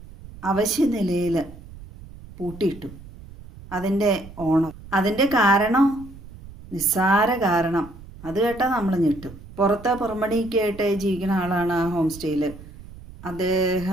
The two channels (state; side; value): noise; right; rumble, 17 dB below the sound